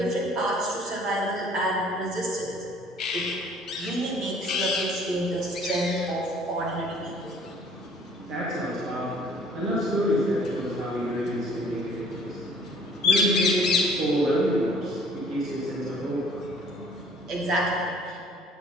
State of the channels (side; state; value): both; normal; correlation 0.55